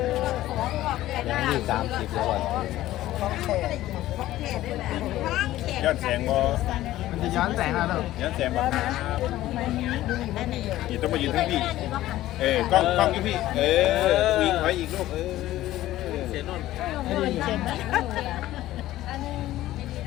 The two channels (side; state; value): right; quieter; 15.0 dB